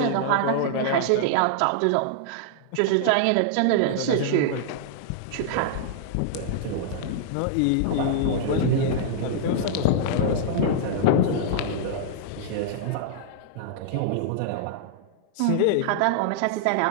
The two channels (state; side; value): different; both; correlation -0.01